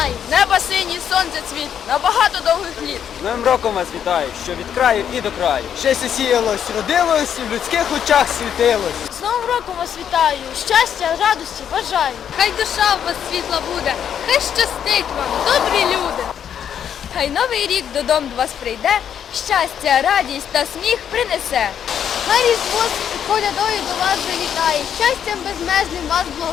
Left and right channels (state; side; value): quieter; right; 8.8 dB